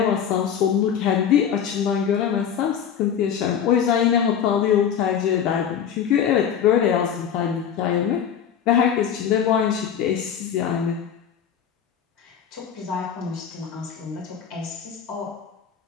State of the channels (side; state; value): right; quieter; 8.4 dB